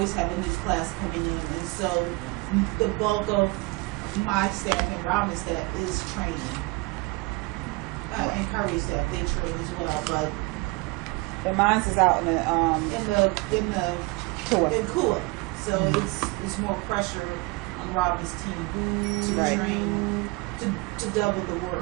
have a new class coming in. And so the bulk of my staff and Robin's staff is training. And Curry's staff, they train as well. But The mine's is out in the tour. in KUA. So it's more pressure on Robin's team to Right. train, to double the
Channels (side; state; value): left; quieter; 25.7 dB